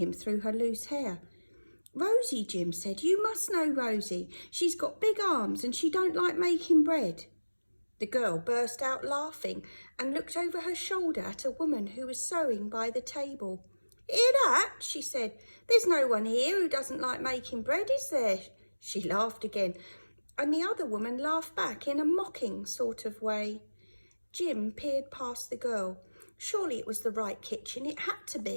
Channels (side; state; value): both; inverted; correlation -1.00